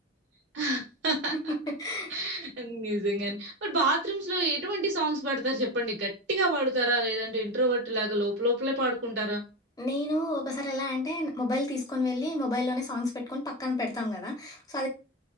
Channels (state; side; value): normal; both; correlation 0.19